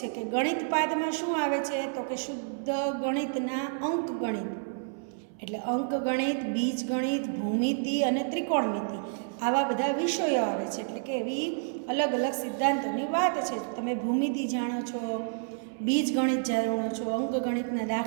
છે કે ગણિત પાદમાં શું આવે છે તો કે શુદ્ધ ગણિતના અંક ગણિત, એટલે અંક ગણિત, બીજ ગણિત, ભૂમિતિ અને ત્રિકોણમિતિ આવા બધા વિષયો આવે છે. એટલે કે એવી અલગ અલગ સિદ્ધાંતોની વાત છે. તમે ભૂમિતિ જાણો છો, બીજ ગણિત જાણો છો, અંક ગણિતના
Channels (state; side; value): silent; left; 58 dB below the other